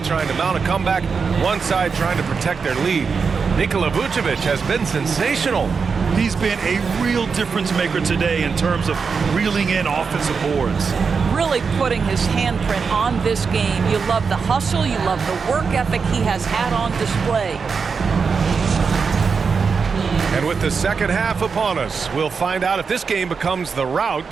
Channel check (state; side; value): quieter; left; 5.4 dB